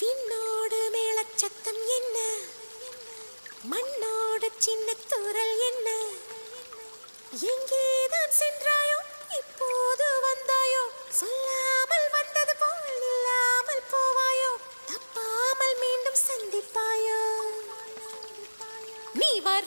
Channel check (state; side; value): inverted; both; correlation -1.00